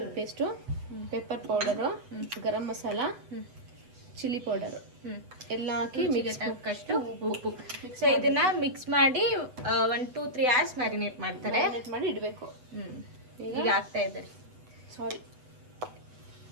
ಪೇಸ್ಟು, ಪೆಪ್ಪರ್ ಪೌಡರು, ಗರಂ ಮಸಾಲ, ಚಿಲ್ಲಿ ಪೌಡರು ಎಲ್ಲ ಹಾಕಿ ಮಿಕ್ಸ್ ಹಾಕಷ್ಟು ಉಪ್ಪು. ಸೊ ಇದನ್ನ ಮಿಕ್ಸ್ ಮಾಡಿ 1-2-3 hours ಮ್ಯಾರಿನೇಟ್ ಮಾಡ್ತಾರೆ. ಮಾಡಿ ಇಡಬೇಕು. ಈಗ ಆಗ್ತಾ ಇದ್ದಾರೆ. ಸಾರಿ,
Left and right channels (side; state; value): left; late; 8.0 ms